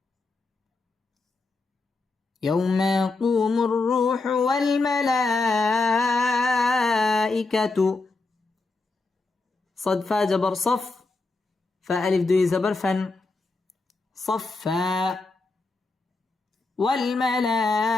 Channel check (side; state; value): right; quieter; 3.5 dB